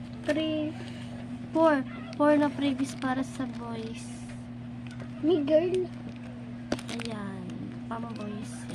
2, 3, 4. 4 na previous para sa boys. May girl. Ayan. Pang boys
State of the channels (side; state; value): both; identical; correlation 1.00